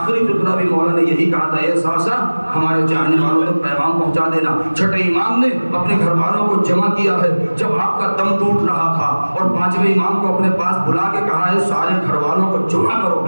فقرہ بھی مولا نے یہی کہا تھا، اے صعصع ہمارے چاہنے والوں تک پیغام پہنچا دینا۔ چھٹے امام نے اپنے گھر والوں کو جمع کیا ہے جب آپ کا دم ٹوٹ رہا تھا، اور 5ویں امام کو اپنے پاس بلا کے کہا ہے سارے گھر والوں کو جمع کرو،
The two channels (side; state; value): both; inverted; correlation -1.00